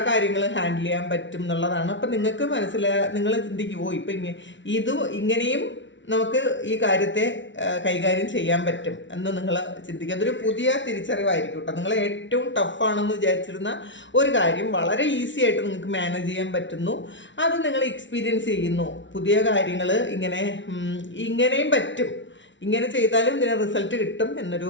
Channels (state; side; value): late; right; 0.55 ms